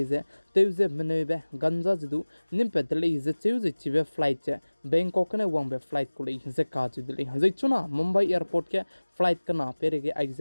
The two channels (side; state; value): both; inverted; correlation -1.00